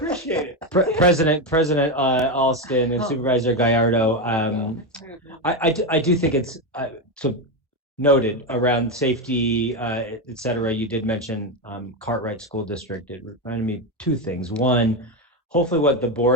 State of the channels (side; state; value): both; normal; correlation 0.11